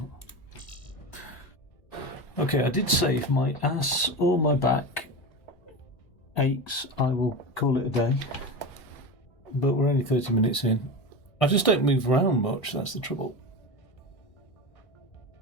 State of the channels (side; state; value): right; late; 1.6 ms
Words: Okay, I did say if my ass or my back aches, I will call it a day. But we're only 30 minutes in. I just don't move around much, that's the trouble.